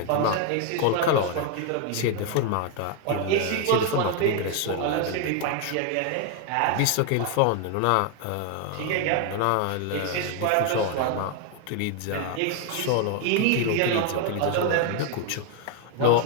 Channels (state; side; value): different; both; correlation 0.01